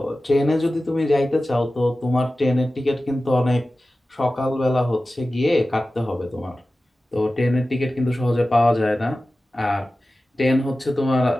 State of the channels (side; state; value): both; normal; correlation 0.95